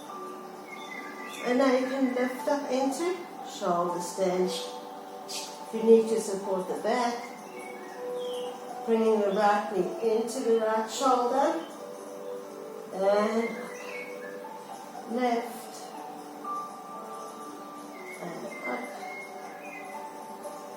and now you can lift up into shoulder stand. If you need to support the back, bringing the right knee into the right shoulder, and left, and up,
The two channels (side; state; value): both; identical; correlation 1.00